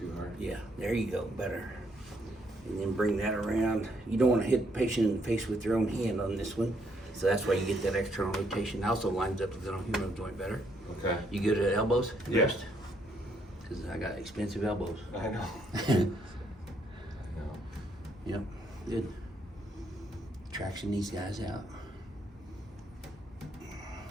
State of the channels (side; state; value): both; normal; correlation 0.72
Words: hard. Yeah, there you go, better. And then bring that around. You don't want to hit the patient in the face with your own hand on this one. So that's why you get that external rotation. It also lines up the glenohumeral joint better. Okay. You go to the elbows Yeah. first? Because I got expensive elbows. I know. I know. Yep, good. Traction these guys out.